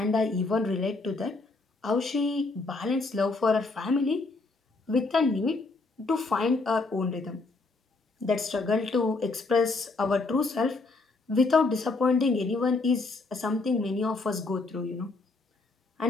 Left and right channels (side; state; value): right; quieter; 3.6 dB